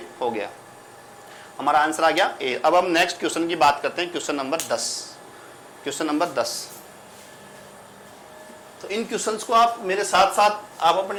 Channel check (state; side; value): identical; both; correlation 1.00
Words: हो गया, हमारा आंसर आ गया ए। अब हम नेक्स्ट क्वेश्चन की बात करते हैं, क्वेश्चन नंबर 10। क्वेश्चन नंबर 10, तो इन क्वेश्चंस को आप मेरे साथ साथ आप